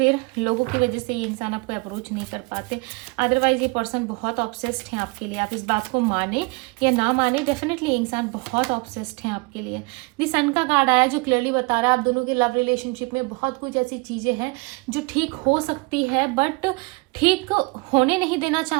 लोगों की वजह से ये इंसान आपको अप्रोच नहीं कर पाते। अदरवाइज ये पर्सन बहुत ऑब्सेस्ड है आपके लिए। आप इस बात को माने या ना माने, डेफिनेटली ये इंसान बहुत ऑब्सेस्ड है आपके लिए। दी सन का कार्ड आया जो क्लियरली बता रहा है आप दोनों के लव रिलेशनशिप में बहुत कुछ ऐसी चीज़ें हैं जो ठीक हो सकती है, बट ठीक होने नहीं देना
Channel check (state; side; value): quieter; left; 27.7 dB